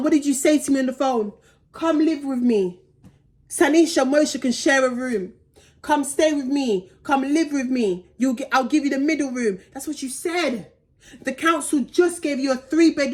what did you say to me on the phone? Come live with me. Sanisha Moshe can share a room. Come stay with me. Come live with me. I'll give you the middle room. That's what you said. The council just gave you a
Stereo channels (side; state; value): both; identical; correlation 1.00